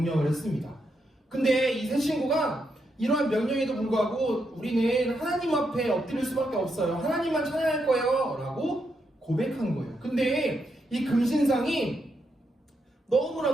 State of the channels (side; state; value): both; normal; correlation 0.81